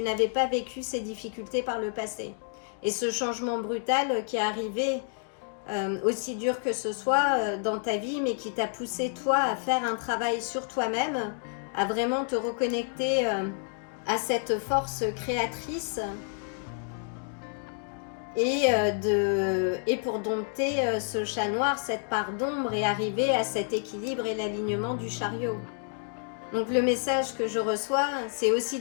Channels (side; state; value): right; silent; 58 dB below the other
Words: n'avais pas vécu ces difficultés par le passé. Et ce changement brutal qui est arrivé, aussi dur que ce soit dans ta vie, mais qui t'a poussé toi à faire un travail sur toi-même, à vraiment te reconnecter à cette force créatrice et pour dompter ce chat noir, cette part d'ombre et arriver à cet équilibre et l'alignement du chariot. Donc le message que je reçois, c'est aussi